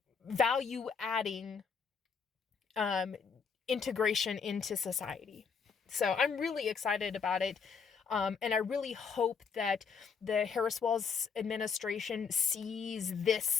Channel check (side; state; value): right; quieter; 5.9 dB